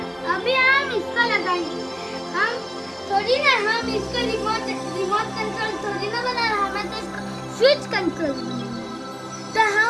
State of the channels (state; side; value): identical; both; correlation 1.00